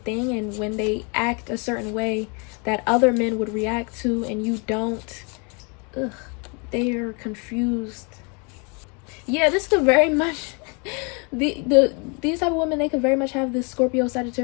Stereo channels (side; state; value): right; quieter; 33.6 dB